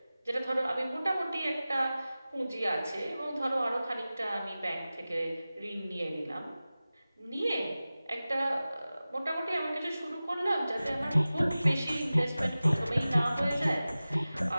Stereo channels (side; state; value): both; inverted; correlation -0.96